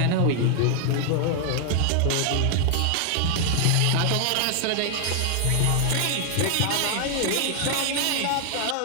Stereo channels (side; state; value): both; different; correlation 0.00